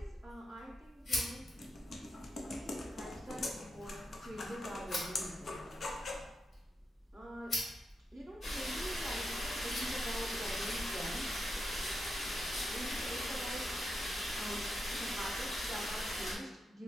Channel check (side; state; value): both; normal; correlation 0.86